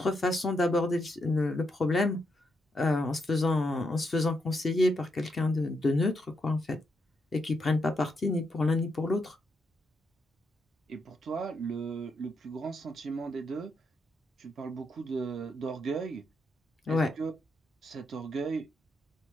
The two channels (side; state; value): both; normal; correlation 0.80